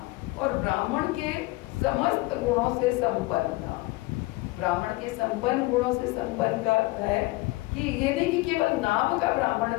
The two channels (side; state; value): right; quieter; 21.4 dB